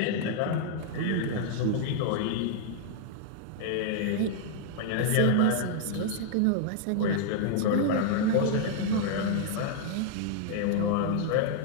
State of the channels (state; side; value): different; both; correlation -0.01